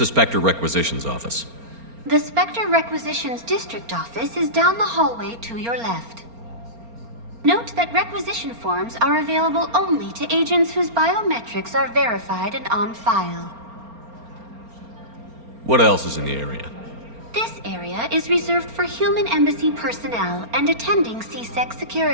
Spectre Requisitions Office? The Spectre Requisitions District Office is down the hallway to your left. Note that requisition forms are available only to agents whose biometrics are verified and on file. What else is in the area? This area is reserved for human embassy personnel and attending CSEC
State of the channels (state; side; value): late; left; 4.3 ms